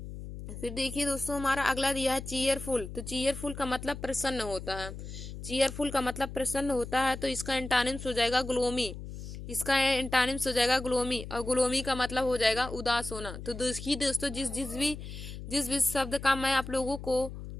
फिर देखिए दोस्तों हमारा अगला दिया है चीयरफुल। तो चीयरफुल का मतलब प्रसन्न होता है। चीयरफुल का मतलब प्रसन्न होता है, तो इसका एंटानिम्स हो जाएगा ग्लोमी। इसका एंटानिम्स हो जाएगा ग्लोमी, और ग्लोमी का मतलब हो जाएगा उदास होना। तो देखिए दोस्तों जिस भी शब्द का मैं आप लोगों को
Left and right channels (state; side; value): noise; left; hum, 10 dB below the sound